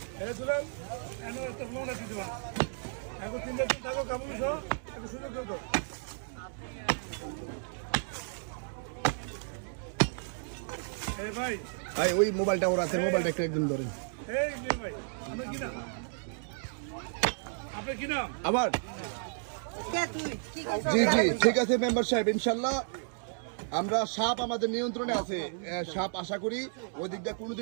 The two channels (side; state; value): left; silent; digital silence